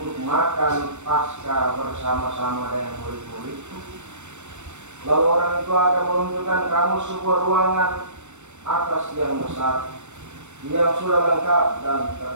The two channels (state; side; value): late; left; 0.84 ms